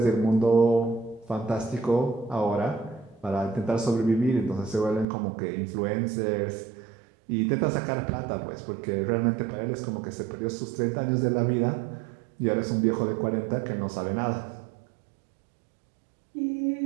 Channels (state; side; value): drops out; left; at 5.1 s